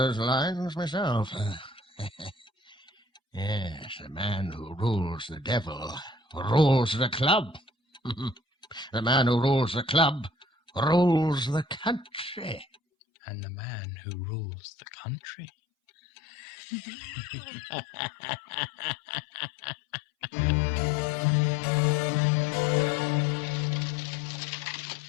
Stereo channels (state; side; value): drops out; right; at 12.8 s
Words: lines myself. Yes, the man who rules the devil rules the club. The man who rules the club rules the country. And the man who rules the country.